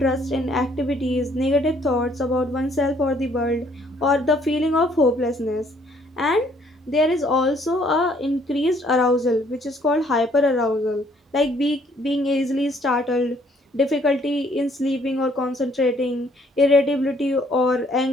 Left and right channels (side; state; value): both; normal; correlation 0.64